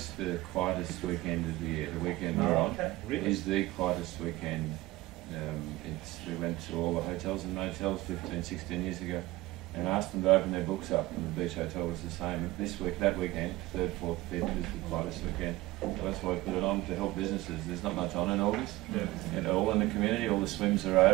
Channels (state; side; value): quieter; left; 18.5 dB